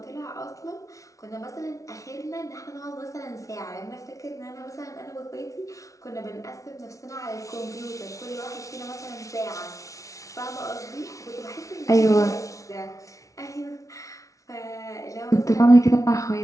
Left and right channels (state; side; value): late; right; 0.16 ms